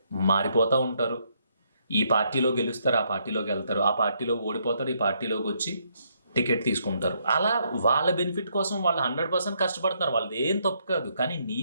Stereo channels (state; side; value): inverted; both; correlation -0.73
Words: మారిపోతూ ఉంటారు. ఈ పార్టీలో గెలుస్తారు, ఆ పార్టీలోకి వెళ్తారు, ఆ పార్టీలో ఓడిపోతారు, ఈ పార్టీలోకి వచ్చి టికెట్ తీసుకుంటారు. అలా వాళ్ళ బెనిఫిట్ కోసం వాళ్ళు 100% కష్టపడుతున్నారు. వాళ్ళది ఏం తప్పు కాదు. కానీ